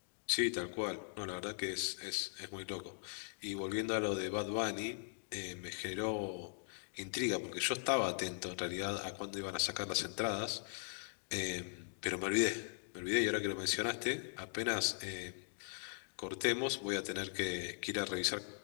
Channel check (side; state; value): right; silent; digital silence